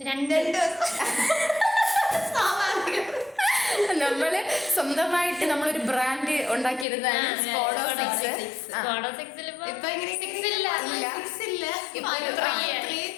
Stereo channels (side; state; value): right; drops out; at 6.9 s